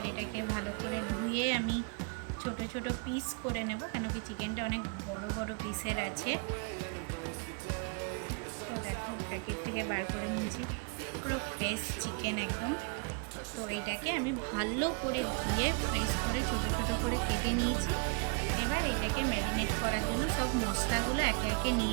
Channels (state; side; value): quieter; left; 34.3 dB